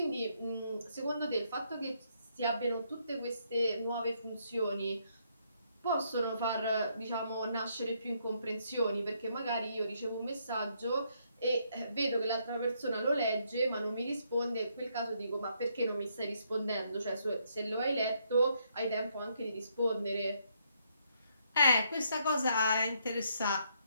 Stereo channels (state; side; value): inverted; both; correlation -0.73